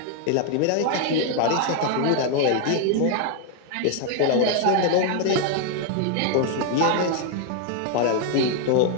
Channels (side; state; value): both; different; correlation 0.00